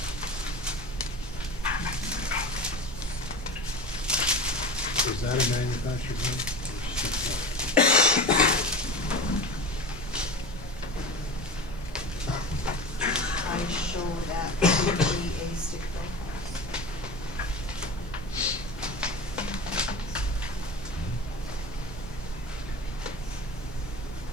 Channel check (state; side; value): normal; both; correlation 0.31